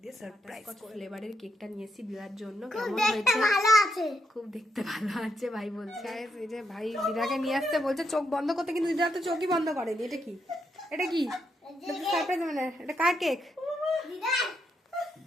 দিয়ে সারপ্রাইজ ফ্লেভারের কেকটা নিয়েছি দিদার জন্য। কেমন হয়েছে? খুব দেখতে ভালো আছে ভাই বলছে। এই যে ভাই দিদাকে নিয়ে আসতে বলছে চোখ বন্ধ করতে, কিন্তু দিদা তো চোখই বন্ধ করেনি। এটা কি? এটা কি সারপ্রাইজ? মানে এটা কার কেক? দিদা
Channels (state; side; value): normal; both; correlation 0.80